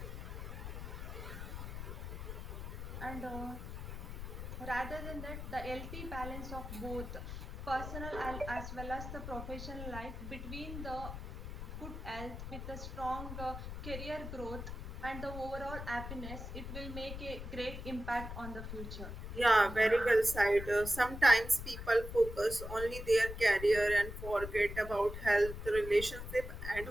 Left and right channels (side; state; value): left; noise; rumble, 8 dB below the sound